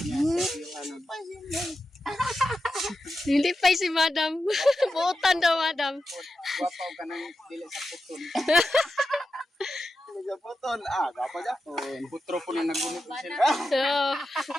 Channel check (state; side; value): normal; both; correlation 0.90